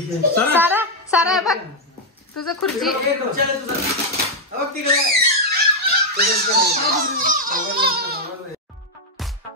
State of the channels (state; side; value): normal; both; correlation -0.01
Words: सारा सारा बघ तुझं खुर्ची.